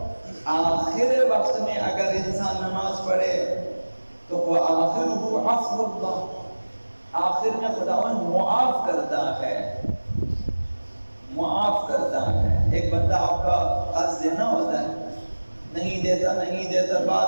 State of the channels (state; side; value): inverted; both; correlation -1.00